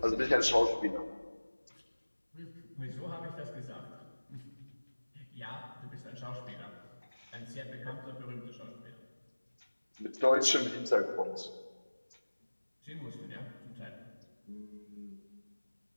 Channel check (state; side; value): inverted; both; correlation -1.00